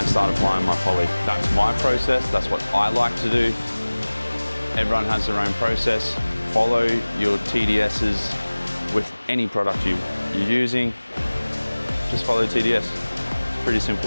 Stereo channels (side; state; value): both; inverted; correlation -1.00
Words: start applying my poly. That's my process, that's what I like to do. Everyone has their own process. Follow your TDSs with any product you're using. Just follow TDS, pretty